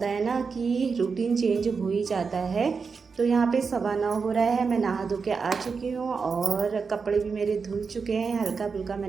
है ना कि रूटीन चेंज हो ही जाता है। तो यहाँ पे 9:15 हो रहा है। मैं नहा धो के आ चुकी हूँ और कपड़े भी मेरे धुल चुके हैं। हल्का फुल्का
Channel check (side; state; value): left; quieter; 5.2 dB